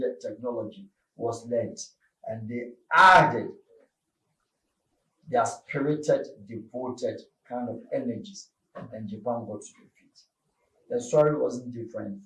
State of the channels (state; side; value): identical; both; correlation 1.00